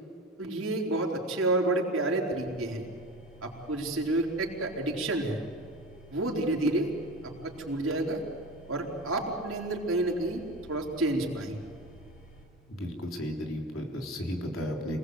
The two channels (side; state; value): both; normal; correlation 0.31